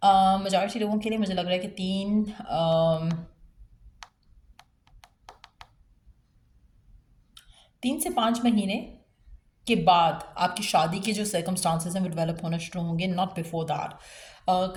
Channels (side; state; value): both; identical; correlation 1.00